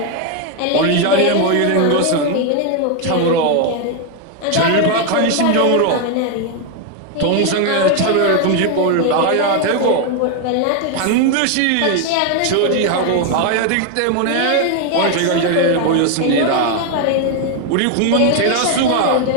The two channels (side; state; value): both; different; correlation 0.01